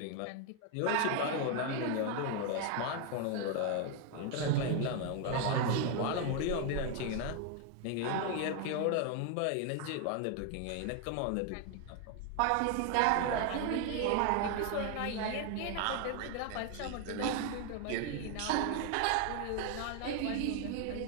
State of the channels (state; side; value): different; both; correlation 0.01